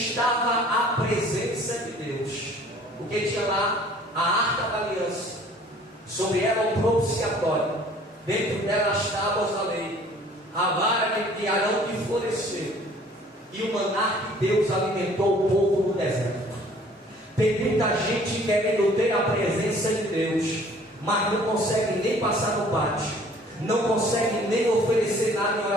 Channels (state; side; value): normal; both; correlation 0.53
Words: a presença de Deus, porque tinha lá a arca da aliança, sobre ela o propiciatório, dentro dela as tábuas da lei, a vara de Arão que floresceu, e o maná que Deus alimentou o povo no deserto. Tem muita gente querendo ter a presença de Deus, mas não consegue nem passar no pátio, não consegue nem oferecer nada em